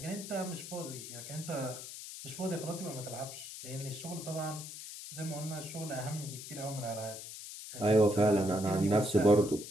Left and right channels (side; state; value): left; noise; hiss, 11 dB below the sound